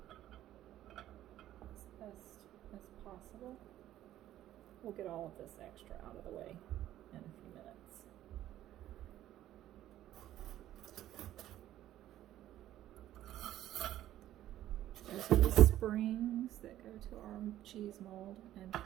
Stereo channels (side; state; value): left; quieter; 13.0 dB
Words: best as possible. We'll get all of this extra out of the way in a few minutes. Those are the springs that go to our cheese mold, and